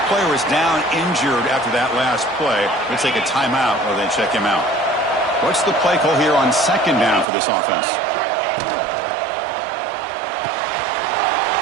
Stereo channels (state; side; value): drops out; left; at 7.2 s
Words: player is down injured after that last play. They'll take a timeout or they check him out. What's the play call here on 2nd down for this offense?